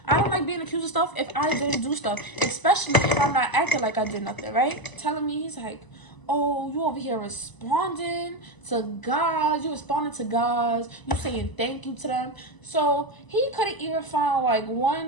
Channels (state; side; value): late; right; 1.0 ms